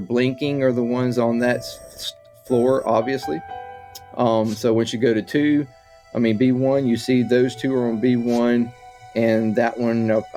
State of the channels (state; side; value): identical; both; correlation 1.00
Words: are the ones on that floor, obviously. So once you go to B1, you see those 2 are on B1, and that one,